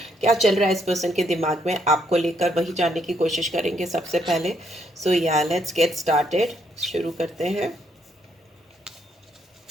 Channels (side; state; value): both; normal; correlation 0.73